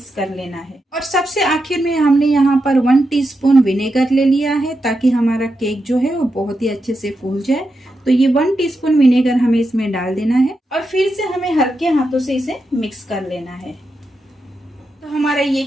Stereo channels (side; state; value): both; normal; correlation 0.87